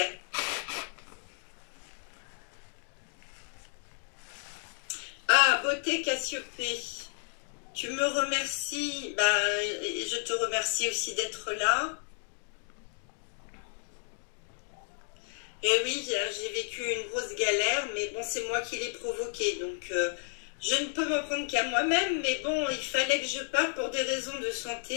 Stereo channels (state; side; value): silent; right; 56 dB below the other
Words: Ah, beauté Cassiopée. Tu me remercies. Je te remercie aussi d'être là. Et oui, j'ai vécu une grosse galère, mais bon, c'est moi qui l'ai provoquée. Donc, je ne peux m'en prendre qu'à moi-même, mais bon, il fallait que je parte pour des raisons de